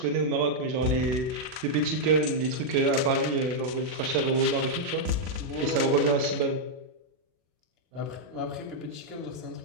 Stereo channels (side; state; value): left; late; 39 ms